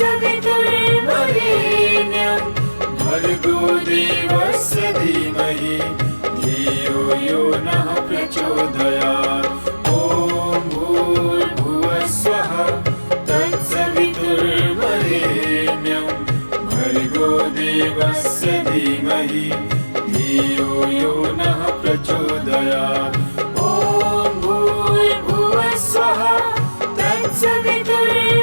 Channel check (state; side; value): inverted; both; correlation -1.00